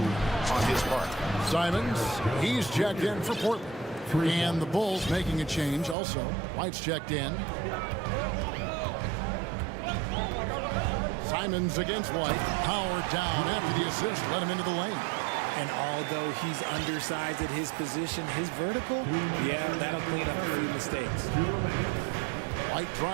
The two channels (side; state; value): left; drops out; at 6.0 s